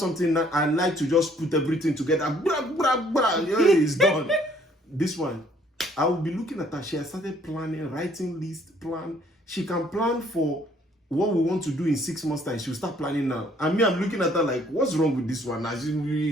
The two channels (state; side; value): normal; both; correlation 0.62